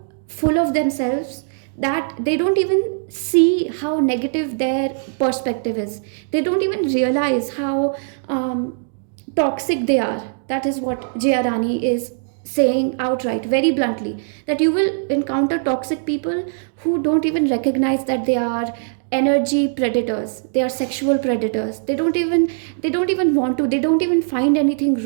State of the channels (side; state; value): left; silent; digital silence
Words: full of themselves that they don't even see how negative their perspective is. They don't even realize how toxic they are. That is what Jayarani is saying outright, very bluntly, that you will encounter toxic people who don't even recognize that they are energy predators, they are sexual predators. They don't even want to, they don't even find anything